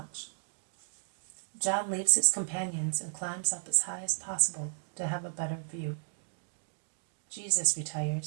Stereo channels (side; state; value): left; silent; digital silence